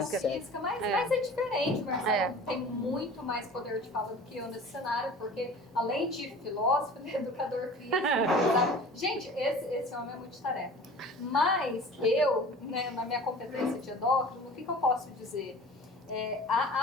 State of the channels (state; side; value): normal; both; correlation 0.42